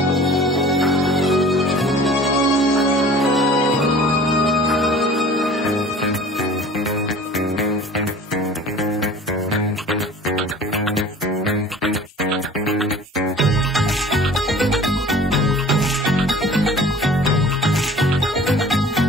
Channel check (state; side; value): normal; both; correlation 0.45